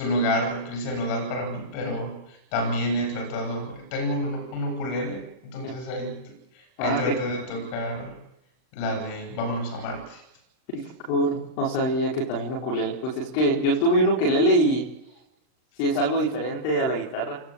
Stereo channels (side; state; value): right; late; 39 ms